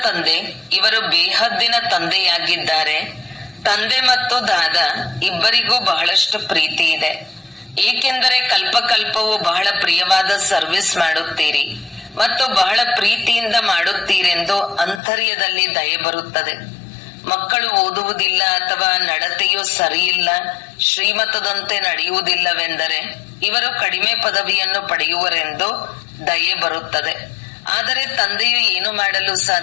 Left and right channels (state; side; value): drops out; right; at 15.0 s